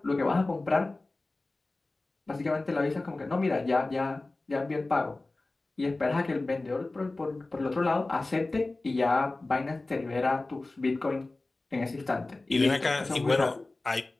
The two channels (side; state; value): right; quieter; 3.1 dB